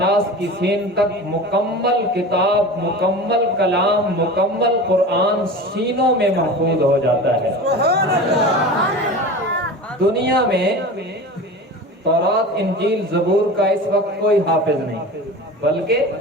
کی سین تک مکمل کتاب، مکمل کلام، مکمل قرآن سینوں میں محفوظ ہو جاتا ہے. دنیا میں تورات، انجیل، زبور کا اس وقت کوئی حافظ نہیں، بلکہ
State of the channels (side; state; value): both; normal; correlation 0.33